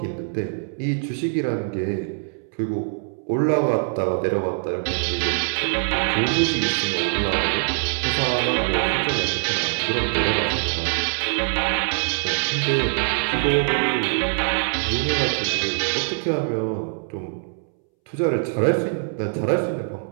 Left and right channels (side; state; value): left; silent; 63 dB below the other